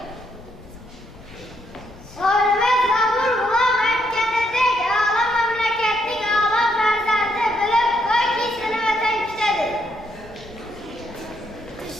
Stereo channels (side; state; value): left; noise; rumble, 21 dB below the sound